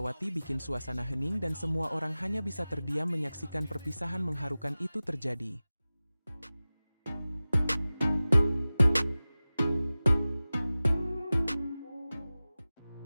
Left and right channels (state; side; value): inverted; both; correlation -0.97